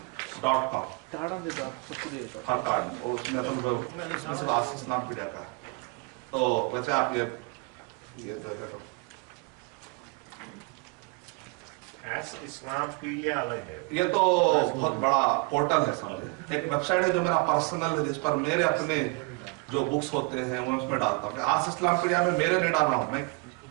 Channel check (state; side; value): quieter; left; 29.6 dB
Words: ٹاڑا دے دو آپ سب کو دے دو. ہر کارڈ اس میں اصل آس اسلام پیڈیا کا ہے. تو ویسے آپ یہ جو ہے تو اسلام پیڈیا الگ ہے, یہ تو بہت بڑا پورٹل ہے سمجھے, ایک ویب سائٹ ہے جو میرا پرسنل ہے, جس پر میرے اپنے جو بکس ہوتے ہیں وہ اس میں ڈالتا ہوں. آس اسلام پیڈیا میں میرے نہیں ڈال رہا ہوں, میں